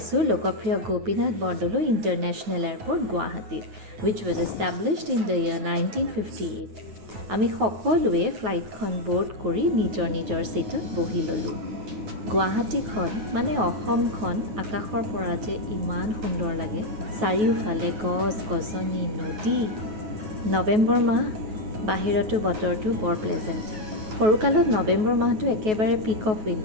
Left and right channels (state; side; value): late; left; 9.3 ms